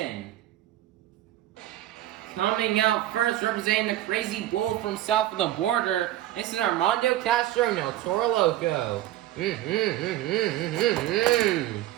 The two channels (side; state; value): left; quieter; 14.0 dB